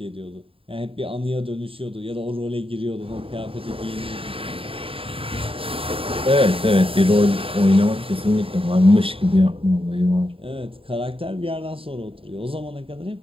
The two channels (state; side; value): late; left; 0.27 ms